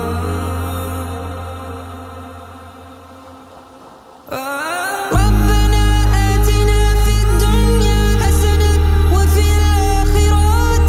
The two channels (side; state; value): both; identical; correlation 1.00